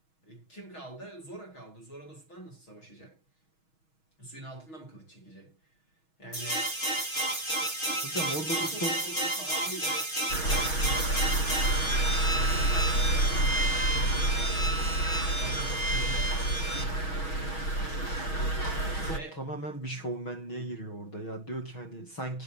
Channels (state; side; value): late; right; 6.3 ms